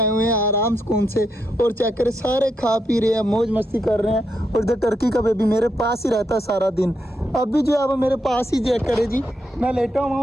हुए हैं आराम सुकून से, और चेक करें सारे खा पी रहे हैं, मौज मस्ती कर रहे हैं। और इधर टर्की का बेबी मेरे पास ही रहता है सारा दिन, अब भी जो है वो मेरे पास ही चेक करे जी, मैं लेटा हुआ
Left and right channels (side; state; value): both; normal; correlation 0.81